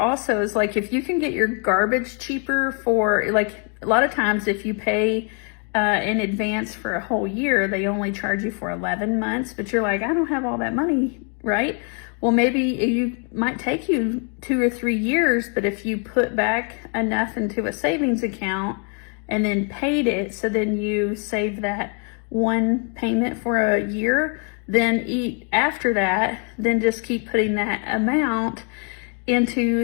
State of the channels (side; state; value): right; quieter; 39.9 dB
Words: is like if you can get your garbage cheaper for, like a lot of times if you pay in advance for a whole year, they only charge you for 11 months, but you're like, I don't have all that money, right? Well, maybe you might take you 2 or 3 years, but if you put back enough into a savings account and then paid it, so then you save that one payment for a year, then after that, then just keep putting that amount into